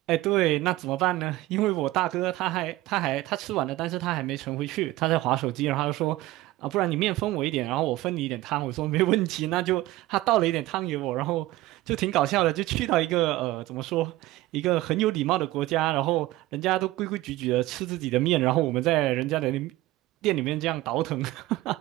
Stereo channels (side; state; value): left; quieter; 17.3 dB